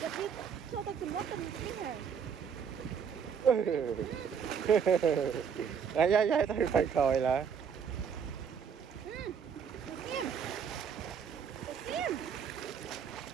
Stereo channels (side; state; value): left; quieter; 7.1 dB